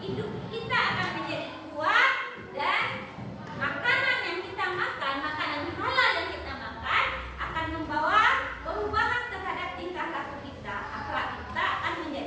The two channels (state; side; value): identical; both; correlation 1.00